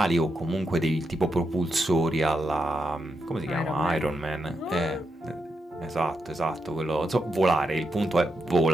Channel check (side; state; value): both; normal; correlation 0.84